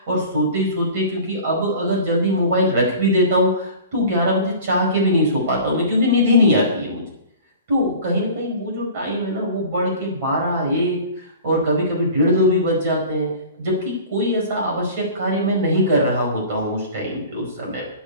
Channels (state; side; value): inverted; both; correlation -0.41